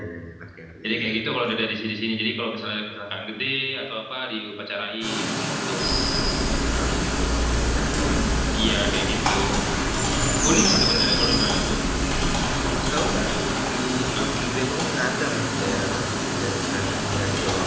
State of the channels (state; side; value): identical; both; correlation 1.00